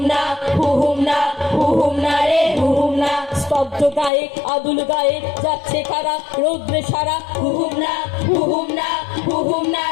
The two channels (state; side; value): drops out; right; at 4.1 s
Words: স্তব্ধ গায়ক আদুল গায়ক যাচ্ছে কারা রৌদ্রে সারা। হুহুম না হুহুম না হুহুম না